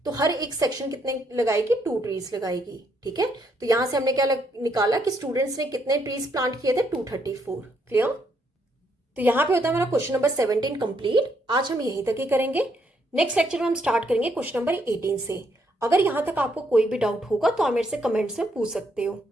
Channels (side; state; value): both; normal; correlation 0.74